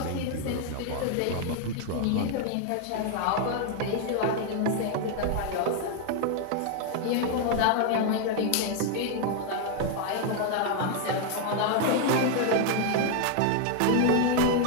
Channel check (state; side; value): different; both; correlation 0.00